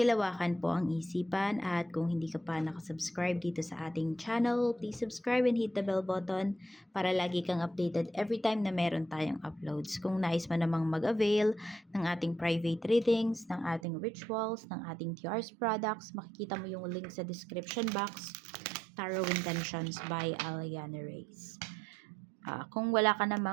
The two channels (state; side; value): drops out; left; at 13.9 s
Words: po ang isipan at kung hindi ka pa nakasubscribe dito sa ating channel, please subscribe and hit the bell button para lagi kang updated every time na meron tayong uploads. Kung nais mo namang mag-avail ng ating private readings, ng ating rituals, ng ating TR's products, makikita mo yung link sa description box. Tarot Intentions by Aliana Reyes. Kung wala ka